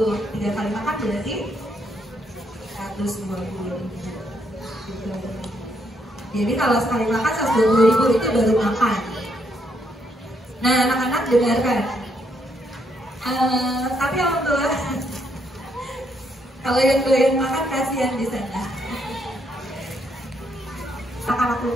3 kali makan berarti 120.000. Gitu. Jadi kalau sekali makan 120.000 itu baru makan. Nah anak-anak dengarkan. Tapi alhamdulillah kalau yang doyan makan kasihan di sana. Anak-anak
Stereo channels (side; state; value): both; normal; correlation 0.74